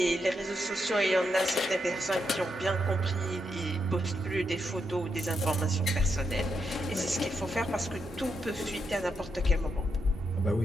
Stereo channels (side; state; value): both; normal; correlation 0.82